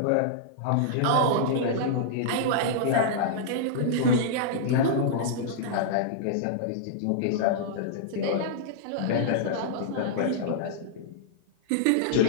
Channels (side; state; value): both; different; correlation -0.02